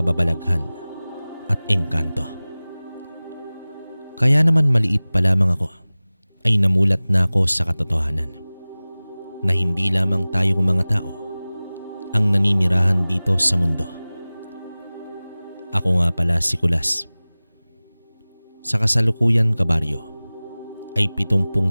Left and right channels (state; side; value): inverted; both; correlation -0.99